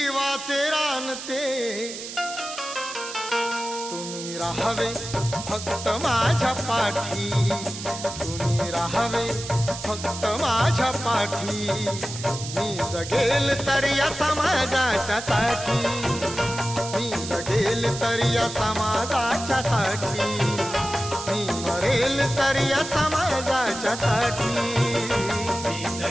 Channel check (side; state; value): right; noise; hiss, 9 dB below the sound